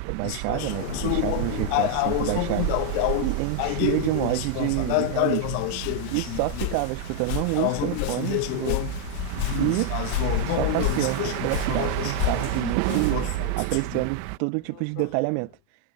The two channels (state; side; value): different; both; correlation 0.00